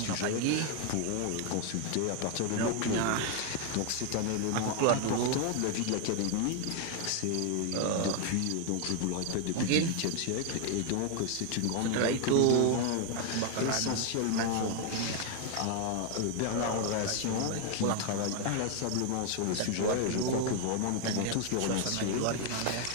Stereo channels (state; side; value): different; both; correlation 0.01